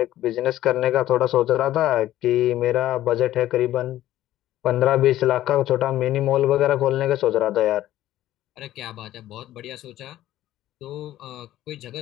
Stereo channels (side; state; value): right; quieter; 13.8 dB